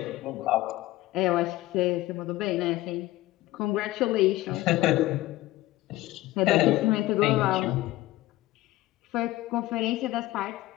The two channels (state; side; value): quieter; right; 16.9 dB